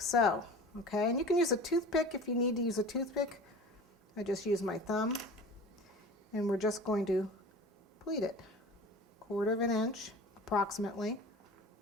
so. Okay, and you can use a toothpick if you need to use a toothpick. I just use my thumb, and we're just going to pleat it 1/4 inch approximately.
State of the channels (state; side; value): normal; both; correlation 0.38